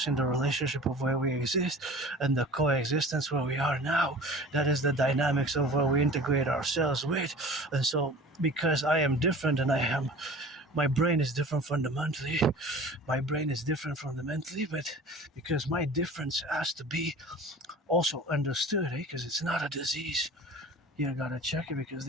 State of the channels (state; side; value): normal; both; correlation 0.41